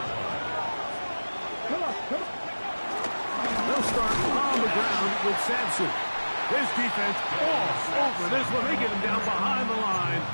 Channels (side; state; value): both; inverted; correlation -1.00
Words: line. They'll start on the ground with Sampson. This defense all over this one. They get him down behind the line.